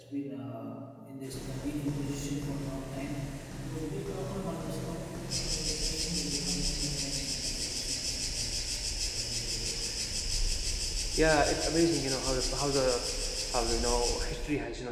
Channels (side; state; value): both; identical; correlation 1.00